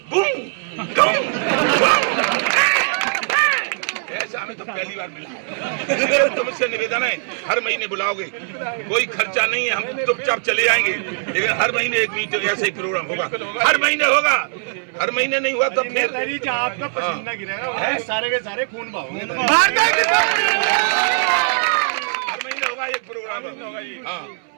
बूम बूम बूम। ऐसा हमें तो पहली बार मिला। तुमसे निवेदन है, हर महीने बुलाओगे, कोई खर्चा नहीं है, हम चुपचाप चले आएंगे, लेकिन हर महीने एक मीटिंग, ऐसे ही प्रोग्राम होगा, हर महीने होगा। हर महीने नहीं हुआ तो फिर आपका पसीना गिरेगा, सारे के सारे खून बहाओगे। हर महीने होगा एक प्रोग्राम। हाँ,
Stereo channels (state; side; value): silent; left; 65 dB below the other